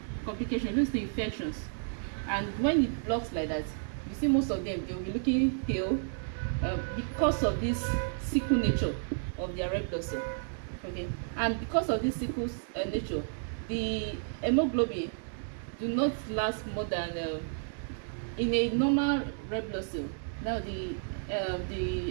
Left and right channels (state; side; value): silent; left; digital silence